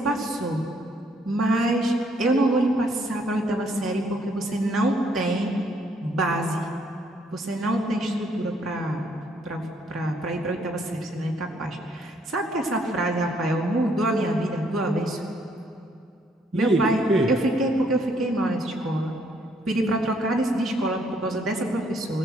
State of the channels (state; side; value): normal; both; correlation 0.68